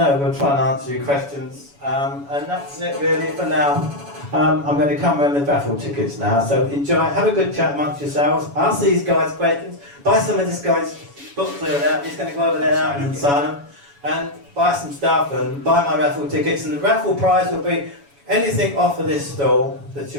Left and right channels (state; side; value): late; left; 7.1 ms